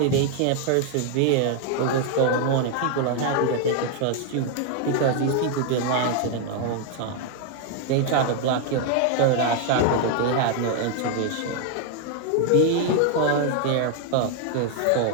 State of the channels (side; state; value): both; different; correlation 0.00